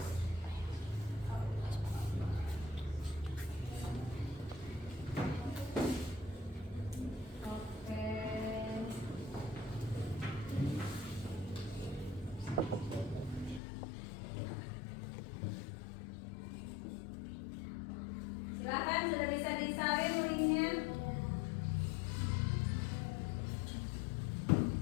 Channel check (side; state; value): right; drops out; at 13.6 s